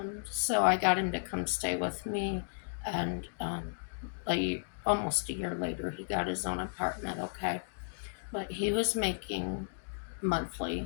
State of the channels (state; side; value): silent; right; digital silence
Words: So I got him to come stay with me, and almost a year later, he got his own apartment, okay? But he was making